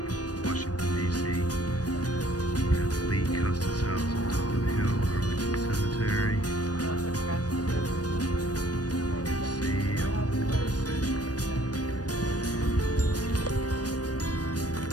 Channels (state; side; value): late; right; 0.68 ms